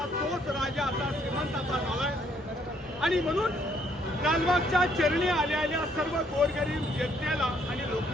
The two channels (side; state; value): both; normal; correlation 0.67